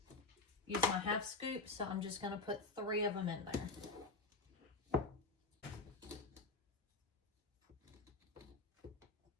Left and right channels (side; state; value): right; quieter; 3.6 dB